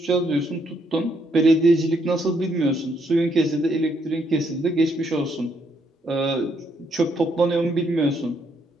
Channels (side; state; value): both; normal; correlation 0.73